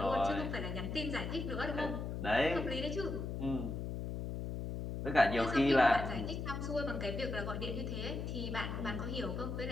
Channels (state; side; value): noise; left; hum, 4 dB below the sound